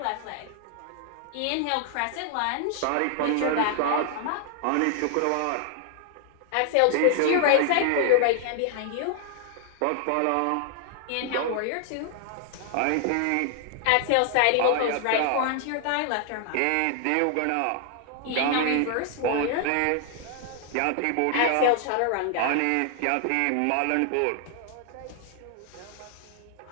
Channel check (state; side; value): different; both; correlation 0.00